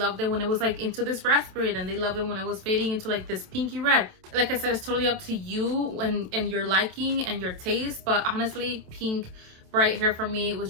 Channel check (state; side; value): late; left; 27 ms